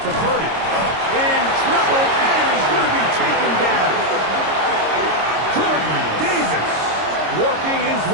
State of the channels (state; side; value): late; left; 26 ms